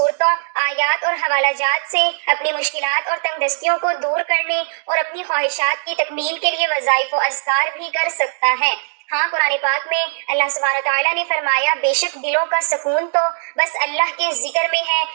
آیات اور حوالہ جات سے اپنی مشکلات اور تنگ دستیوں کو دور کرنے اور اپنی خواہشات کی تکمیل کے لیے وظائف و اذکار بھی کر سکتا ہے۔ ہاں، قرآن پاک میں اللہ سبحانہ تعالیٰ نے فرمایا، بے شک دلوں کا سکون تو بس اللہ کے ذکر میں ہے،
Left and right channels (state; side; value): silent; left; digital silence